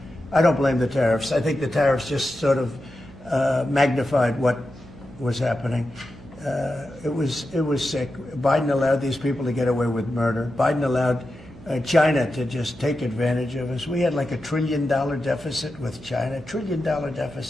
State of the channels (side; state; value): right; noise; hum, 20 dB below the sound